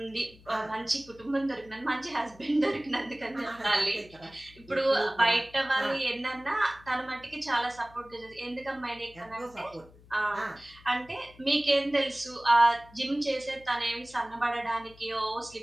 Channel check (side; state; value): left; noise; hum, 24 dB below the sound